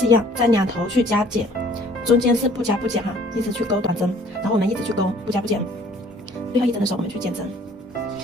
一样，在两头去加减，中间是不加不减哈，一直去钩短针，然后我们一直去钩不加不减。最后1针的时候我们去减针。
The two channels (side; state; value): both; normal; correlation 0.56